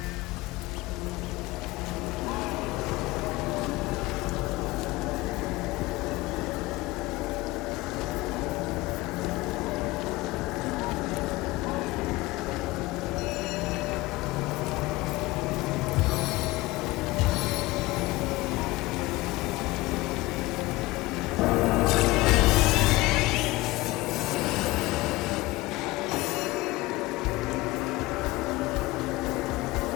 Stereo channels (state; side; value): quieter; right; 20.3 dB